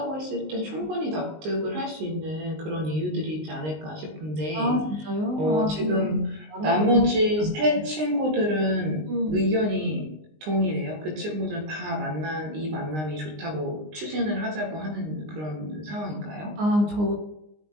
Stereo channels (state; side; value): late; left; 19 ms